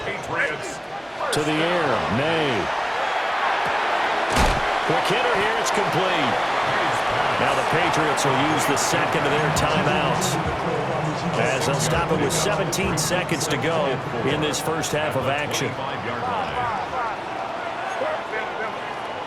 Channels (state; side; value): identical; both; correlation 1.00